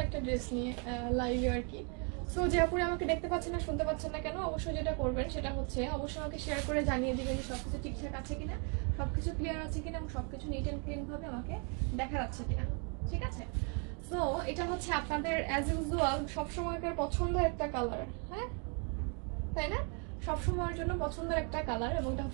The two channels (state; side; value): quieter; left; 37.4 dB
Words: একটা ড্রেস নিয়ে লাইভে আর কি। সো যে আপুরা আমাকে দেখতে পাচ্ছেন না, শুনতে পাচ্ছেন না কেন, অবশ্যই যেটা করবেন সেটা হচ্ছে অবশ্যই আমাকে শেয়ার করে জানিয়ে দিবেন যে সবকিছু ঠিকঠাক আছে কিনা, সবকিছু ক্লিয়ার আছে কিনা এবং সবকিছু নিট অ্যান্ড ক্লিন ভাবে আমাকে দেখা যাচ্ছে কিনা। ঠিক আছে? সো এটা হচ্ছে আপনাদের অ্যাজ ইউজুয়াল সবসময়কার পছন্দের একটা কালার, হ্যাঁ তাই না? সবসময়ের জন্য পছন্দের একটা কালার, এবং এটা